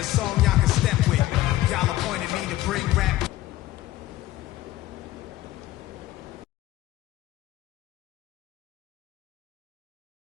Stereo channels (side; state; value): right; quieter; 15.8 dB